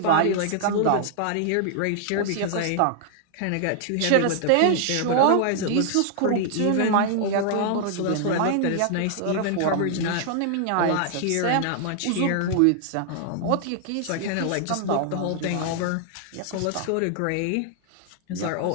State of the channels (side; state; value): both; different; correlation 0.00